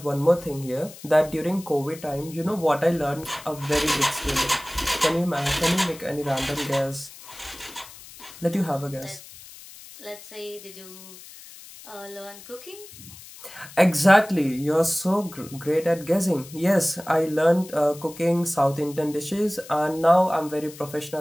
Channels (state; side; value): noise; left; hiss, 18 dB below the sound